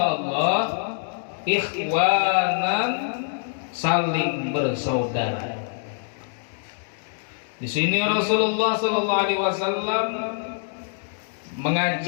Allah ikhwanan, saling bersaudara. Di sini Rasulullah sallallahu alaihi wasallam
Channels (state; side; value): silent; right; 62 dB below the other